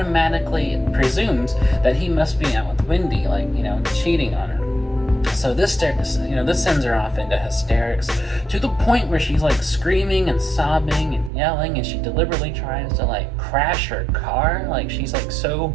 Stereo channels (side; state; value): left; drops out; at 11.3 s